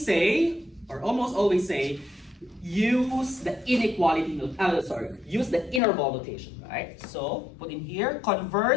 say, or almost always say, use the inequality, use the interval notation, right? So put in here,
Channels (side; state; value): right; drops out; at 5.8 s